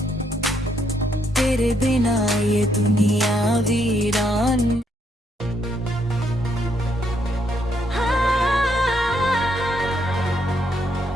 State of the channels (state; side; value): normal; both; correlation 0.74